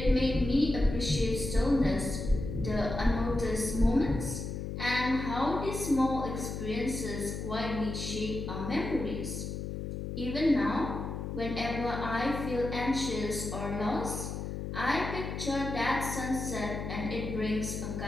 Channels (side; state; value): left; noise; hum, 5 dB below the sound